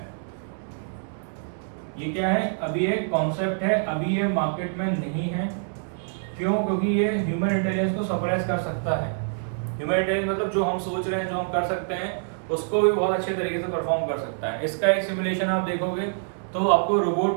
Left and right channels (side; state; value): left; silent; digital silence